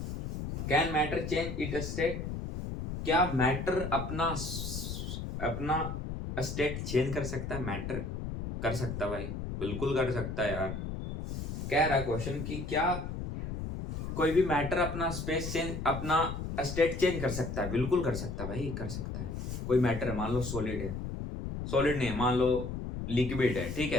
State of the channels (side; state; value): left; noise; rumble, 5 dB below the sound